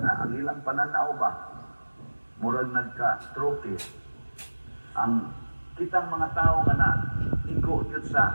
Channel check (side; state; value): both; inverted; correlation -1.00